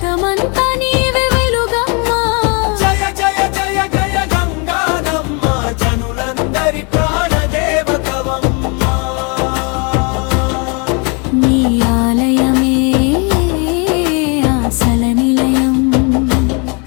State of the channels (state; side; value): quieter; right; 33.3 dB